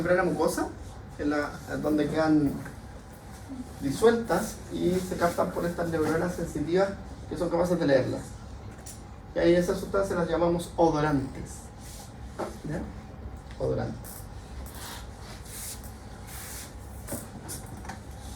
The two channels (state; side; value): identical; both; correlation 1.00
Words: mucosa, donde quedan disueltas y se captan por estas neuronas sensitivas que son capaces de leerlas. Y ahí esas sustancias las llamamos odorantes. ¿Ya? Odorantes.